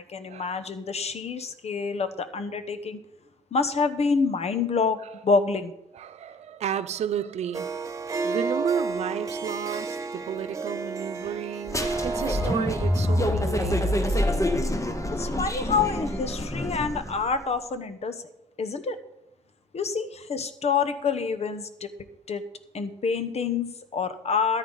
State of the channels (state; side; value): normal; both; correlation 0.51